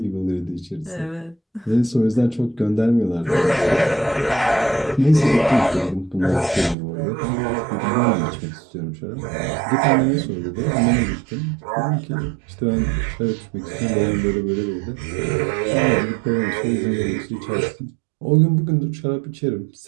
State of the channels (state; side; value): drops out; left; at 6.8 s